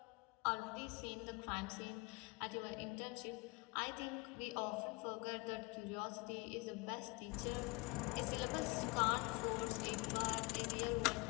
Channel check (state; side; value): quieter; right; 27.8 dB